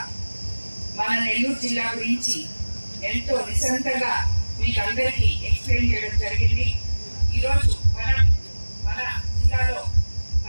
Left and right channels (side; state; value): both; inverted; correlation -1.00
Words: మన నెల్లూరు జిల్లా గురించి ఎంతో నిశంతగా మీకు అందరికీ ఎక్స్ప్లెయిన్ చేయడం జరిగింది. ఈరోజు మన జిల్లాలో